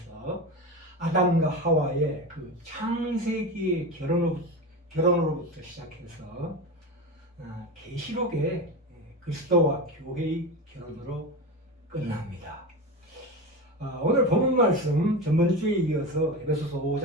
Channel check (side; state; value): both; normal; correlation 0.23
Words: 아담과 하와의 그 창세기의 결혼으로부터 시작해서 계시록의 그리스도와 교회의 결혼으로 끝납니다. 오늘 본문 말씀 전번주에 이어서 에베소서